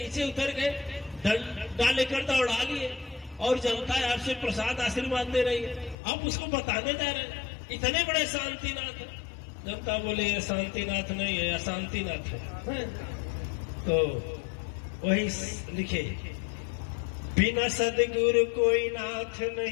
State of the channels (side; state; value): right; drops out; at 6.0 s